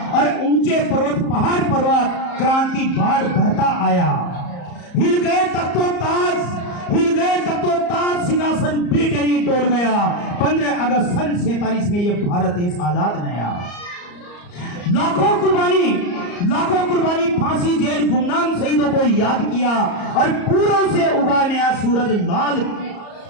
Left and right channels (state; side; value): late; right; 34 ms